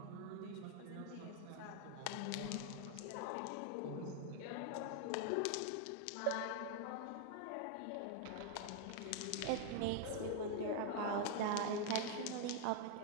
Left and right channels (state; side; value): different; both; correlation 0.00